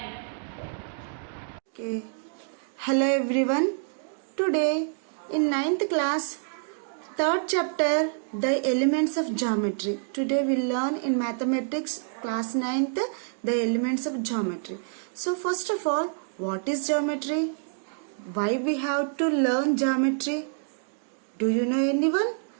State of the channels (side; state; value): left; silent; digital silence